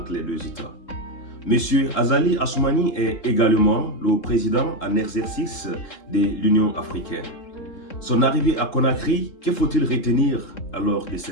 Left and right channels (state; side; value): late; right; 3.7 ms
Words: les deux États. M. Azali Assoumani est également le président en exercice de l'Union africaine. Son arrivée à Conakry, que faut-il retenir alors de